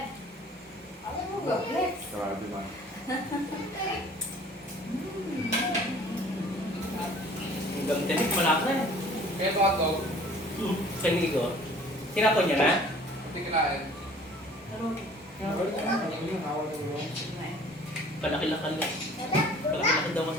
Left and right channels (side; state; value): both; normal; correlation 0.50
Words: Ano mo gablet? Grabe man. Hanggang tinik, malaki. Kaya ito hotdog, Sa ligo. Tinapon niya na? hindi kinain. Palaki-lakal lang. Palaki-lakal daw